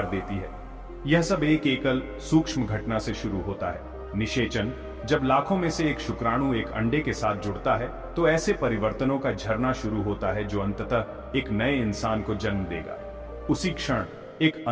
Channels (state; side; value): identical; both; correlation 1.00